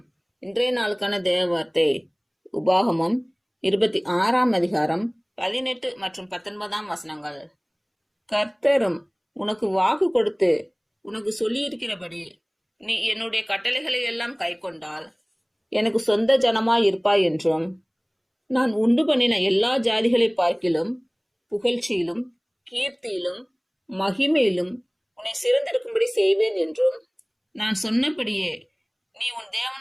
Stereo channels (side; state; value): both; identical; correlation 1.00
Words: இன்றைய நாளுக்கான தேவ வார்த்தை உபாகமம் 26ஆம் அதிகாரம் 18 மற்றும் 19ஆம் வசனங்கள். கர்த்தரும் உனக்கு வாக்கு கொடுத்து உனக்கு சொல்லியிருக்கிறபடி நீ என்னுடைய கட்டளைகளை எல்லாம் கைக்கொண்டால் எனக்கு சொந்த ஜனமாய் இருப்பாய் என்றும், நான் உண்டு பண்ணின எல்லா ஜாதிகளை பார்க்கிலும் புகழ்ச்சியிலும் கீர்த்தியிலும் மகிமையிலும் உன்னை சிறந்திருக்கும்படி செய்வேன் என்றும், நான் சொன்னபடியே நீ உன்